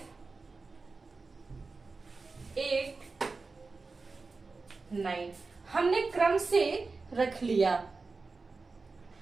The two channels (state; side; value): quieter; left; 4.0 dB